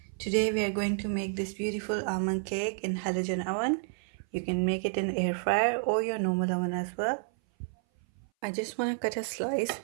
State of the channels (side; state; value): left; silent; 58 dB below the other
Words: Today we are going to make this beautiful almond cake in halogen oven. You can make it in air fryer or your normal oven as well. I just want to cut a slice